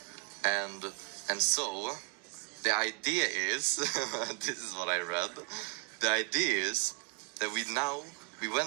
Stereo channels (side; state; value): left; quieter; 30.2 dB